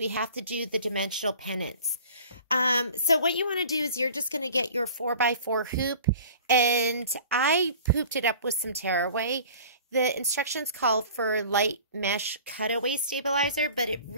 have to do the dimensional pennants. So what you want to do is you're just going to get your 4x4 hoop, and I hooped it up with some tearaway. The instructions call for light mesh cutaway stabilizer, but it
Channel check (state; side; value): inverted; both; correlation -0.45